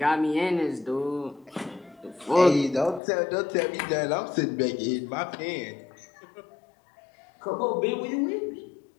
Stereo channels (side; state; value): right; drops out; at 3.0 s